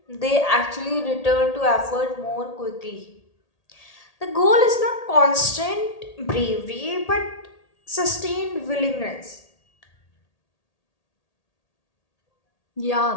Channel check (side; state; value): right; late; 1.8 ms